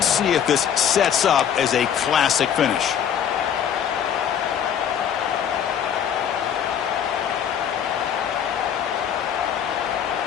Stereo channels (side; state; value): right; quieter; 8.7 dB